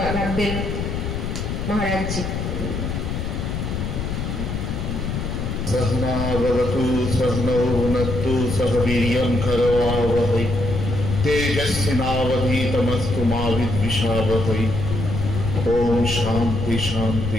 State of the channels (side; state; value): left; noise; rumble, 3 dB below the sound